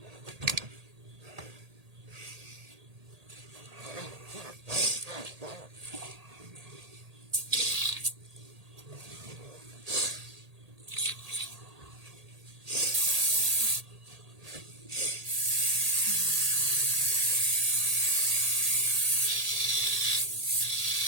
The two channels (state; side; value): late; left; 1.8 ms